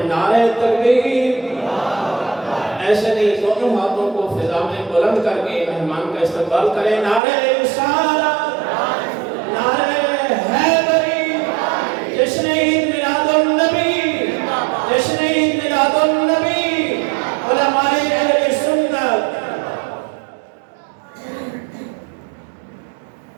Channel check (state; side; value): drops out; left; at 7.2 s